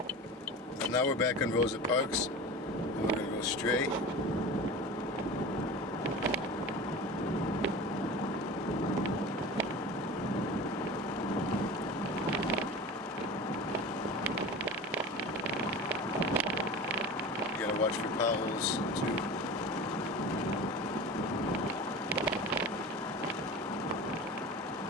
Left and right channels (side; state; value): both; normal; correlation 0.33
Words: And now we're back on Rosa Parks, and we're gonna go straight. Watch for potholes too.